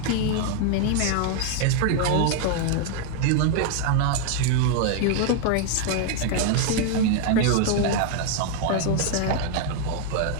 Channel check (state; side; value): different; both; correlation 0.00